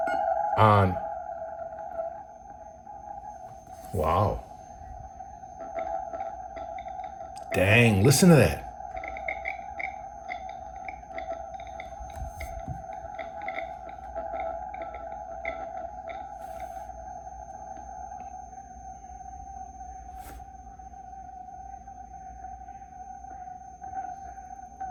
Wow. Dang, listen to that.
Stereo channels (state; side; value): identical; both; correlation 1.00